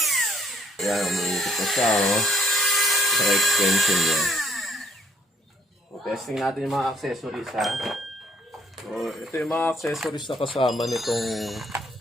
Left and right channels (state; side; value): normal; both; correlation 0.65